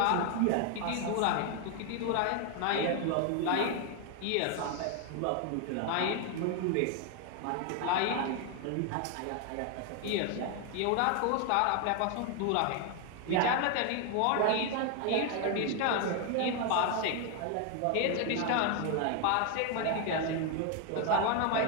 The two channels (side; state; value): both; different; correlation 0.01